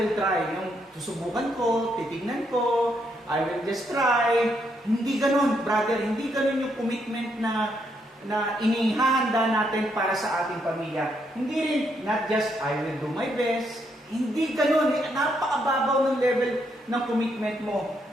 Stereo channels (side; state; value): both; normal; correlation 0.76